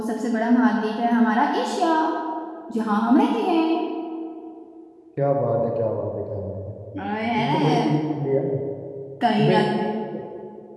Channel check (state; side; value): identical; both; correlation 1.00